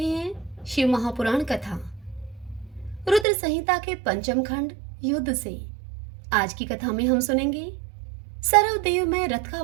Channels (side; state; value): left; drops out; at 3.2 s